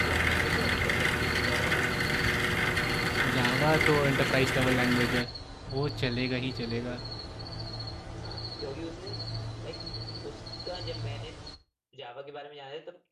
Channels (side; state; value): both; identical; correlation 1.00